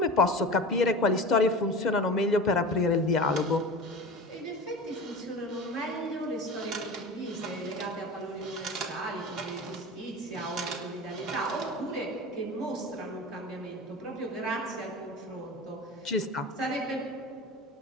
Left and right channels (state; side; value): normal; both; correlation 0.32